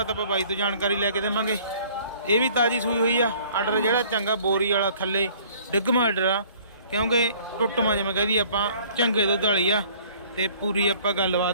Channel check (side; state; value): both; inverted; correlation -0.54